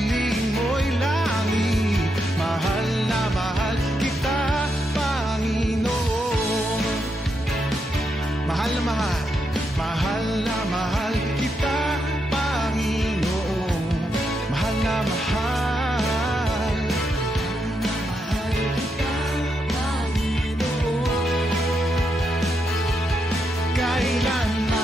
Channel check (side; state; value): both; normal; correlation 0.82